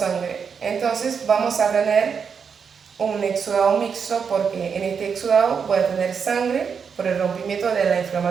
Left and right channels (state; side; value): quieter; left; 6.4 dB